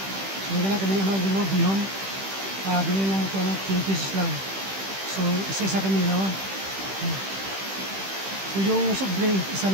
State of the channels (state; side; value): late; left; 15 ms